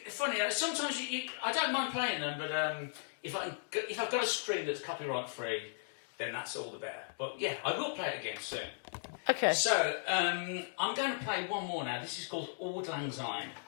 funny. Sometimes I don't mind playing them, but if I've got a stream that's copyright free, then that's all the better. But yeah, I will play it again soon. Okay. So I'm going to play one more now. This is called Auld Lang Syne.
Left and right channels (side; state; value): right; silent; digital silence